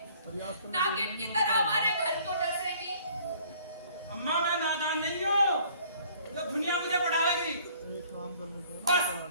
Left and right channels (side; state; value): both; inverted; correlation -0.56